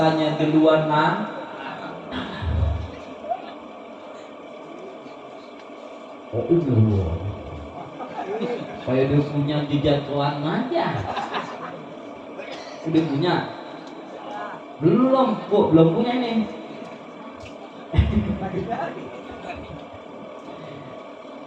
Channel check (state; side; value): identical; both; correlation 1.00